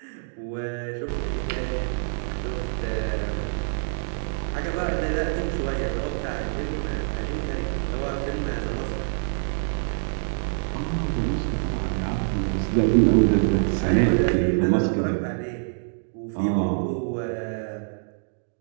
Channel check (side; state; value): left; silent; digital silence